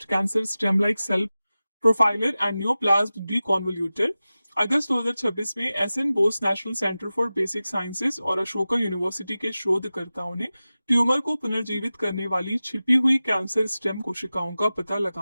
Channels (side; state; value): both; inverted; correlation -0.96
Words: cancer stem like cell profiler and neoplasm deconvolutor. अगस्त 2026 में SN Bose national centre for basic sciences और अशोका यूनिवर्सिटी के शोधकर्ताओं ने ट्यूमर को पुनर्जीवित करने वाली छिपी हुई कैंसर स्टेम कोशिकाओं का पता